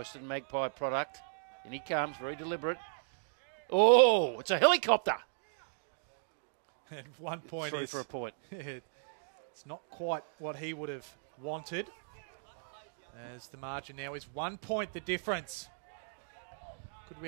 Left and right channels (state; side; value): silent; left; digital silence